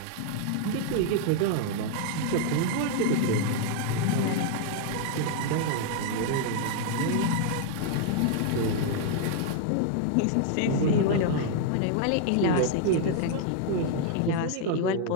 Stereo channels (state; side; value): different; both; correlation 0.00